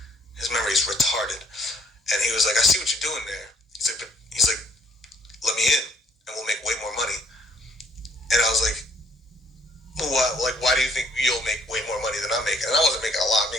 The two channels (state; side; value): normal; both; correlation 0.63